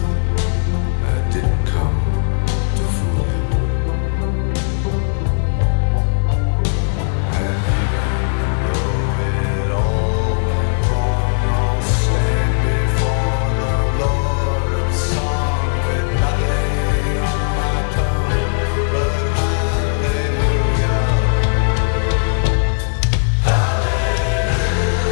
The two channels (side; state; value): right; silent; digital silence